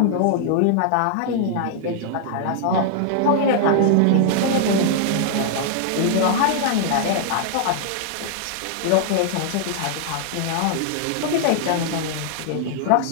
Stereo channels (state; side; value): different; both; correlation -0.01